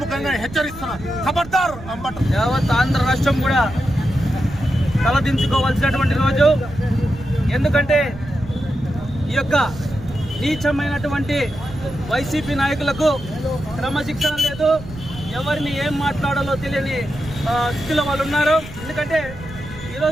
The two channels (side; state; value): right; noise; rumble, 14 dB below the sound